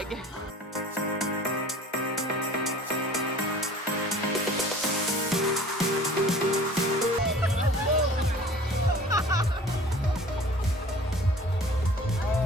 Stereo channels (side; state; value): both; normal; correlation 0.46